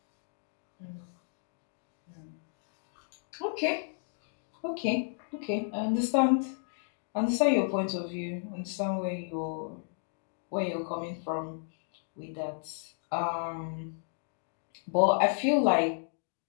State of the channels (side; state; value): right; silent; digital silence